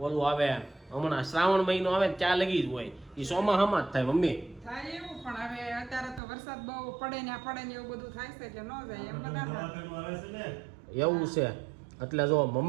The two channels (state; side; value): drops out; left; at 6.2 s